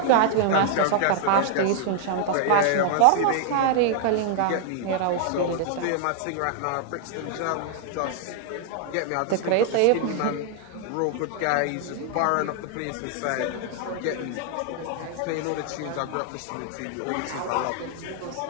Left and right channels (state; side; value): different; both; correlation 0.00